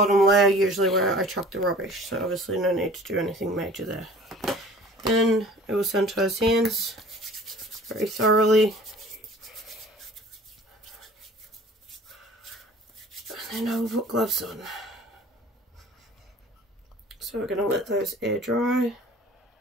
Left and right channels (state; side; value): normal; both; correlation 0.47